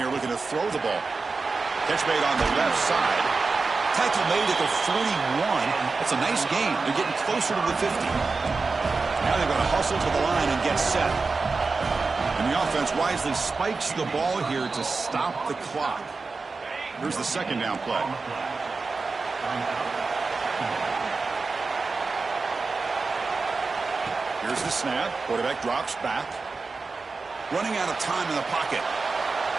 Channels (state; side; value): quieter; left; 4.2 dB